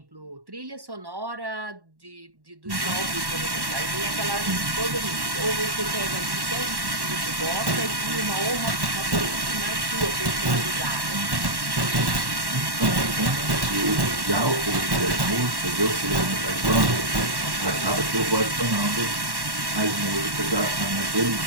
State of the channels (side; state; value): left; late; 1.1 ms